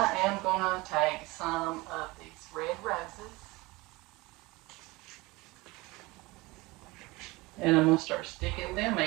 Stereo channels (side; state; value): left; quieter; 22.4 dB